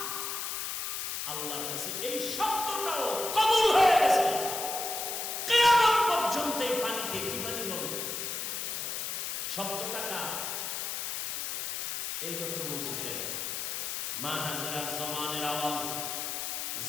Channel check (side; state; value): left; noise; hiss, 3 dB below the sound